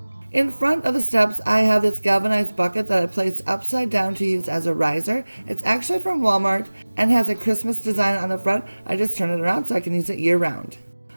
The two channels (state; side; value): inverted; both; correlation -1.00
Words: In front of the steps, I have this galvanized bucket that I placed upside down to use as a riser. It's actually from Walmart and has a Christmas design on the front. I just turn it around so I can use it year round.